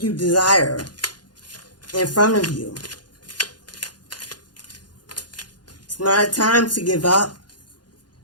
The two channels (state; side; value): late; right; 0.70 ms